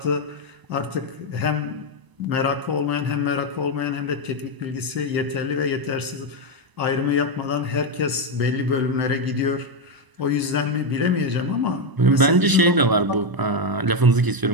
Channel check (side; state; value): left; late; 1.0 ms